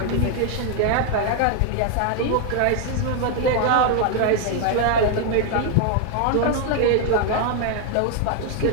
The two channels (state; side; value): different; both; correlation 0.00